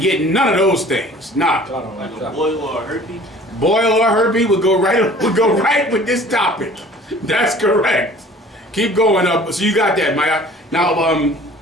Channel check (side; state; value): both; normal; correlation 0.48